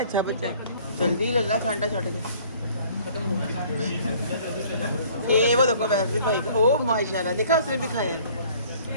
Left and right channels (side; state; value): both; inverted; correlation -0.54